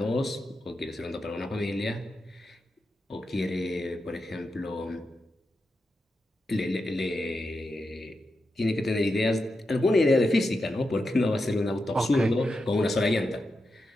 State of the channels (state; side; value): normal; both; correlation 0.88